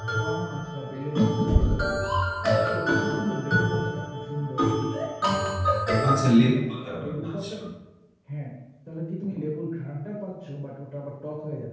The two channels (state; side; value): identical; both; correlation 1.00